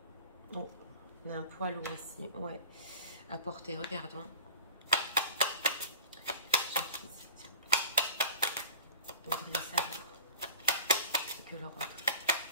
Bon, on a un poids lourd aussi, ouais. À porter, regardons. Donc, vous voulez savoir ce que l'Europe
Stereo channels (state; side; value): inverted; both; correlation -0.37